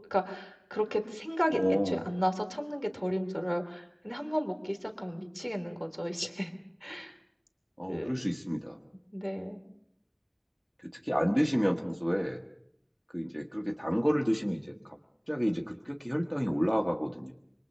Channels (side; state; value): both; identical; correlation 1.00